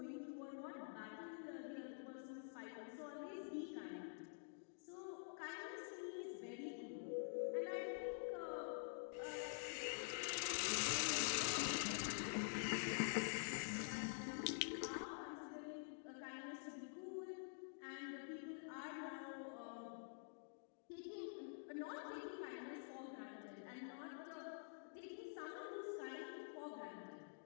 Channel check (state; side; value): silent; right; digital silence